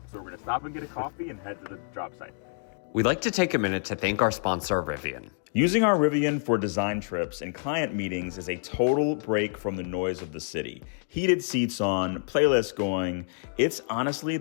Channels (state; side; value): silent; right; digital silence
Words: so we're gonna stop and get a coffee and head to the job site. We'd like to take a minute to thank our sponsor, Rivian. Using our Rivian for design trips and client meetings is a total break from the noise of the city. Heated seats on, playlist going, it's honestly